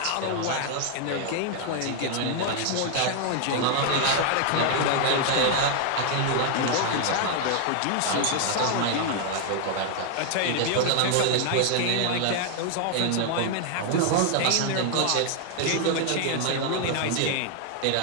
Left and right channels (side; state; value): both; different; correlation 0.00